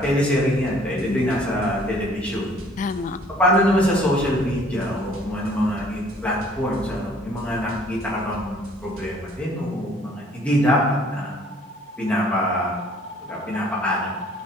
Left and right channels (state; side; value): normal; both; correlation 0.57